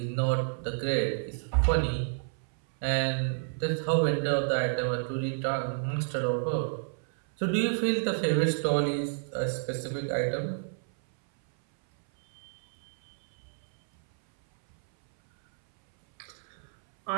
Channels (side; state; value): left; silent; 58 dB below the other